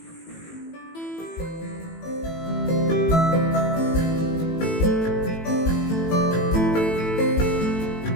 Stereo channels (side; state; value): right; late; 18 ms